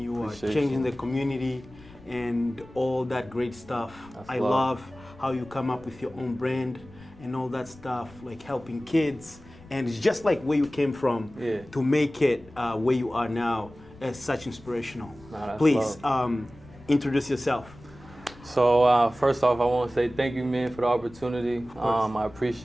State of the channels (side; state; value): left; noise; rumble, 22 dB below the sound